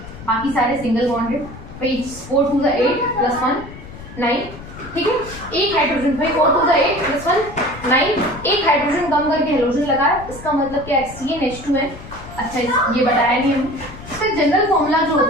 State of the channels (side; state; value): left; noise; rumble, 15 dB below the sound